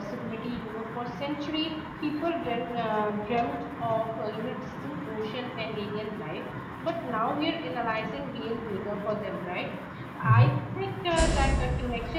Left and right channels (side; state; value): both; identical; correlation 1.00